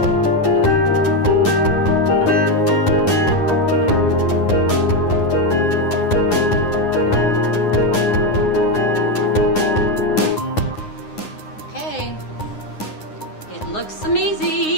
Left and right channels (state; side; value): late; right; 9.7 ms